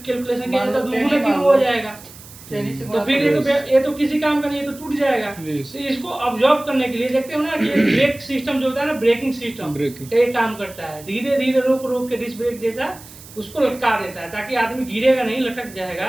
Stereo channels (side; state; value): right; noise; hiss, 19 dB below the sound